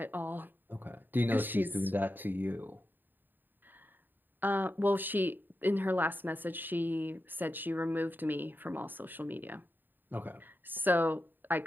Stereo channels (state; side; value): late; left; 0.092 ms